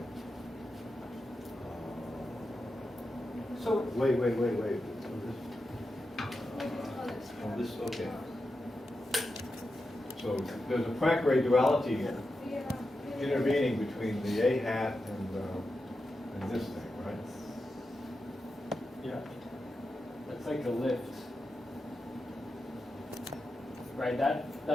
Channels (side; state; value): both; normal; correlation 0.89